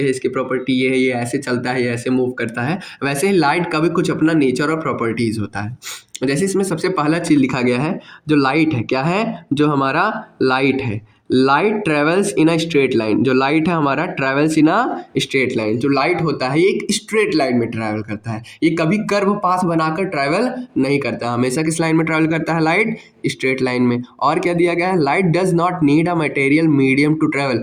है, इसकी प्रॉपर्टी ये है, ये ऐसे चलता है, ये ऐसे मूव करता है, वैसे ही लाइट का भी कुछ अपना नेचर और प्रॉपर्टीज़ होता है। जैसे इसमें सबसे पहला चीज़ लिखा गया है, जो लाइट है, क्या है, जो हमारा लाइट है, light travels in a straight line. जो लाइट है हमारा travels in a straight line. जो लाइट होता है ये एक स्ट्रेट लाइन में ट्रैवल करता है, ये कभी कर्व पाथ बनाकर ट्रैवल नहीं करता, हमेशा किस लाइन में ट्रैवल करता है, लाइट स्ट्रेट लाइन में। और क्या दिया गया है, light does not need a material medium to travel.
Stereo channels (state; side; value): identical; both; correlation 1.00